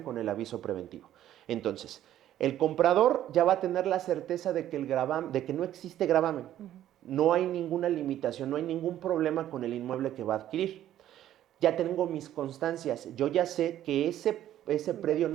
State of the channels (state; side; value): quieter; left; 12.1 dB